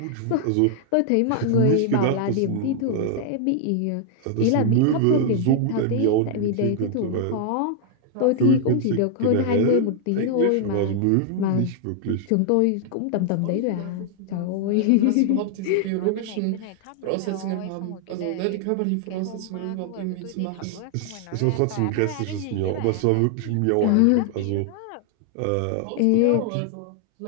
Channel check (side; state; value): both; different; correlation 0.00